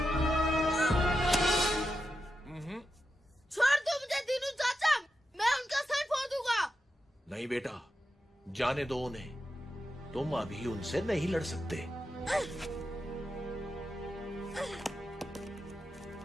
छोड़ दो मुझे दीनू चाचा, मैं उनका सर फोड़ दूंगा। नहीं बेटा, जाने दो उन्हें। तुम अभी उनसे नहीं लड़ सकते।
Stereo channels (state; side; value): normal; both; correlation 0.88